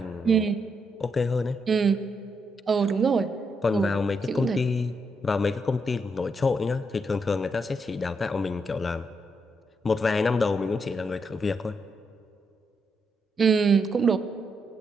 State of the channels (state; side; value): normal; both; correlation 0.80